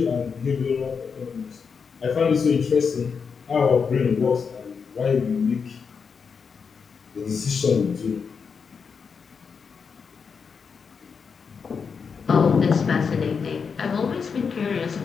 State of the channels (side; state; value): right; quieter; 5.8 dB